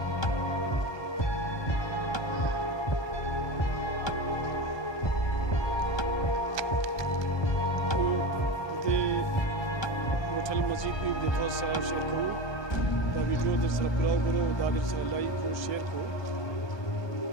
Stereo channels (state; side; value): late; right; 1.2 ms